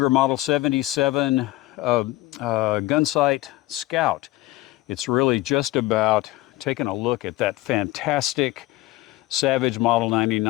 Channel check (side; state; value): right; quieter; 18.0 dB